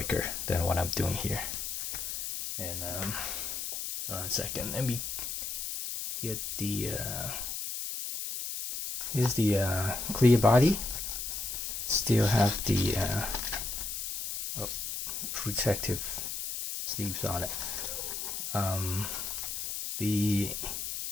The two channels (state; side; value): noise; left; hiss, 4 dB below the sound